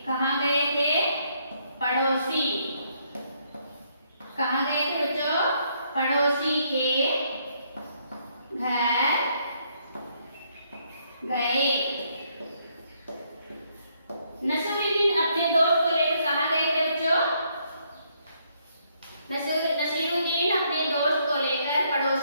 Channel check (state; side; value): inverted; both; correlation -0.72